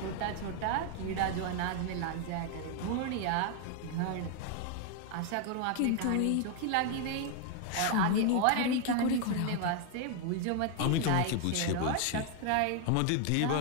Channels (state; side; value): different; both; correlation 0.00